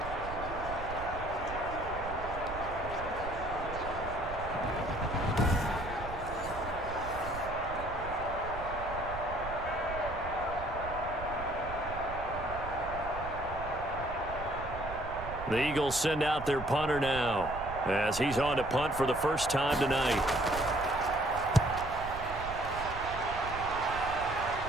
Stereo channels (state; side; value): noise; right; rumble, 10 dB below the sound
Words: The Eagles send out their punter now as he's on to punt for the first time tonight.